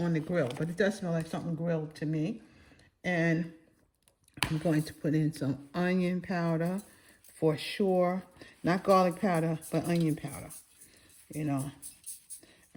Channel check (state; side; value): identical; both; correlation 1.00